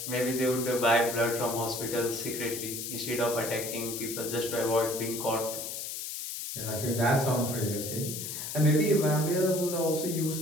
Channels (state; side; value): noise; left; hiss, 6 dB below the sound